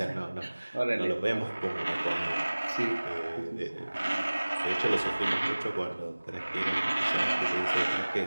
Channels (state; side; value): inverted; both; correlation -1.00